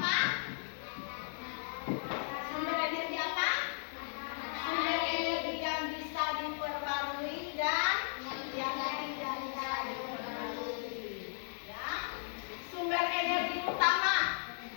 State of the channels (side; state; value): right; silent; digital silence